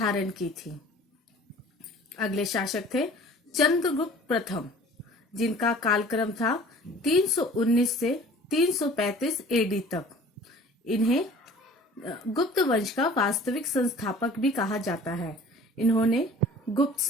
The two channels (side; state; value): both; normal; correlation 0.47